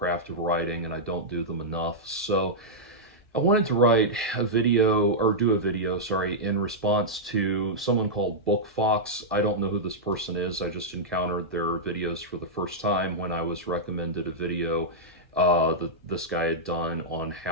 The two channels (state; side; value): normal; both; correlation -0.08